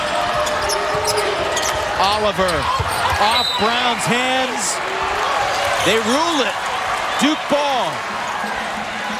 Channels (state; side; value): identical; both; correlation 1.00